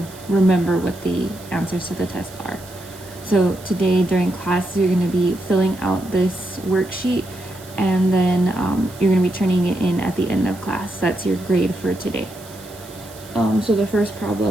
remember what the answers to the test are. So today during class, you're going to be filling out this worksheet, and then you're going to be turning it in at the end of class. That's your grade for today. So the first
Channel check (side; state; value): right; noise; hiss, 20 dB below the sound